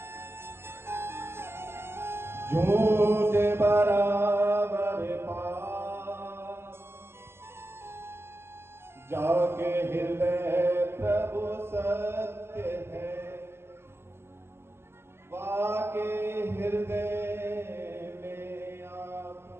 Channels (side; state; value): left; late; 0.12 ms